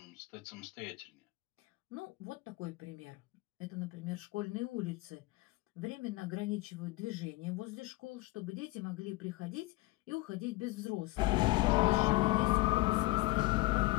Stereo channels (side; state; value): right; quieter; 21.0 dB